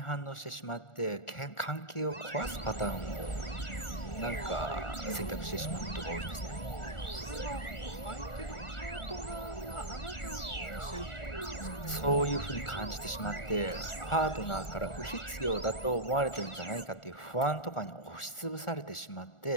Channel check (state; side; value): late; right; 1.4 ms